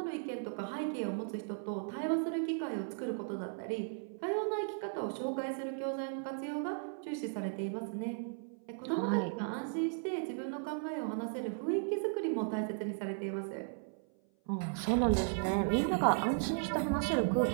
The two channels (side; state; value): left; silent; 54 dB below the other